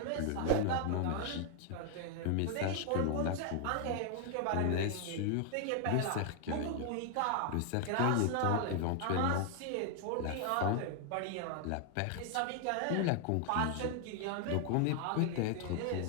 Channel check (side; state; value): both; different; correlation 0.00